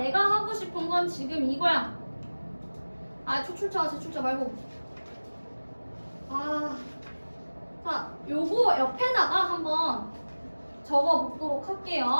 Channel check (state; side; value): inverted; both; correlation -1.00